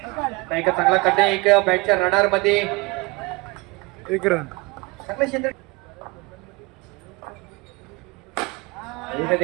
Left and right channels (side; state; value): left; quieter; 25.5 dB